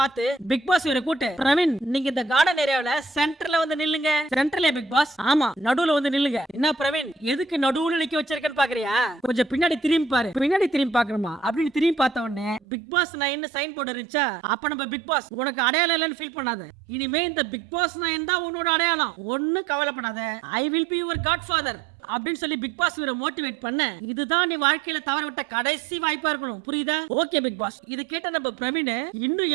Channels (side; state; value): left; drops out; at 12.6 s